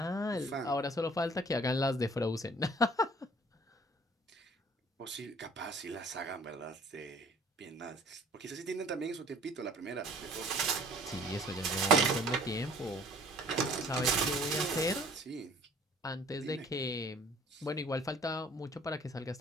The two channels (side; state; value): both; normal; correlation 0.53